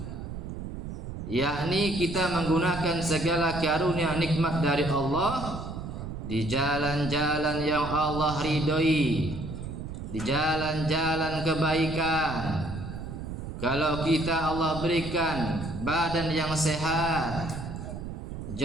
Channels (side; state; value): right; noise; rumble, 8 dB below the sound